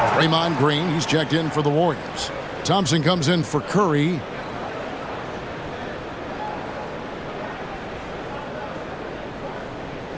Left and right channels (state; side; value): identical; both; correlation 1.00